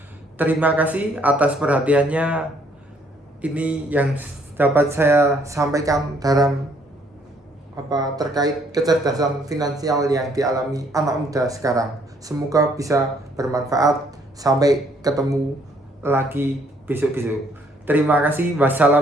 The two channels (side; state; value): both; normal; correlation 0.66